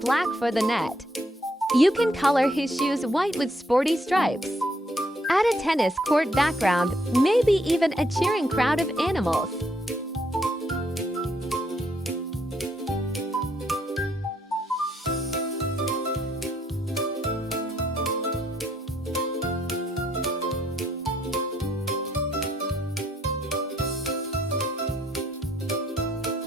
for the net. You can color his shoes white with sporty stripes. Add a tennis court background, maybe even a cheering crowd of animals.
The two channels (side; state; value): both; normal; correlation 0.72